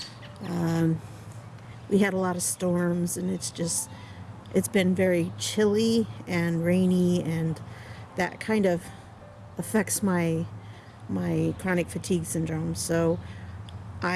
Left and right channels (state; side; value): identical; both; correlation 1.00